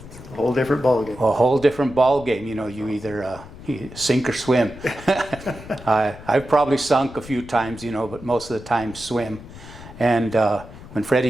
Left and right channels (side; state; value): left; noise; rumble, 16 dB below the sound